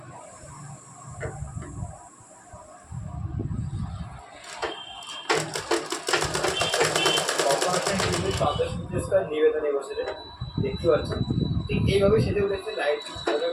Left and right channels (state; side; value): identical; both; correlation 1.00